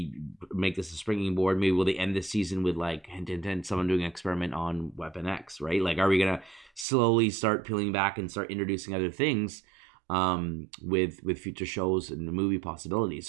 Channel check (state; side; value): drops out; left; at 6.9 s